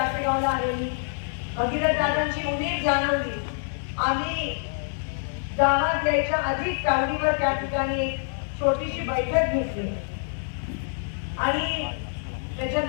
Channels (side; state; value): right; silent; digital silence